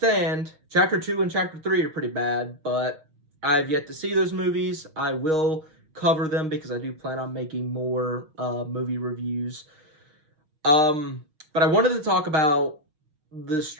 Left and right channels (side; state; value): left; late; 6.4 ms